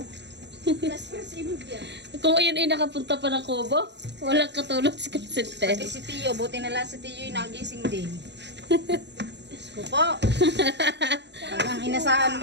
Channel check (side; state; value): left; late; 0.51 ms